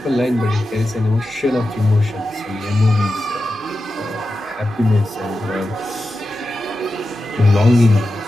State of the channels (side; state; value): both; normal; correlation 0.91